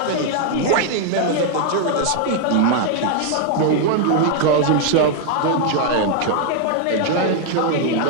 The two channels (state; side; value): different; both; correlation 0.00